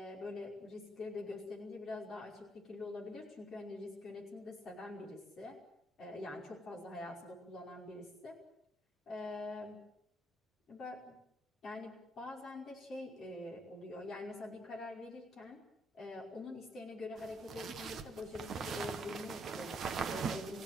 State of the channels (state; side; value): normal; both; correlation 0.72